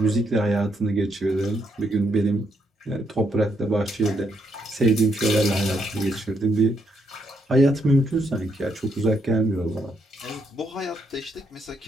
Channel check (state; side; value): normal; both; correlation 0.76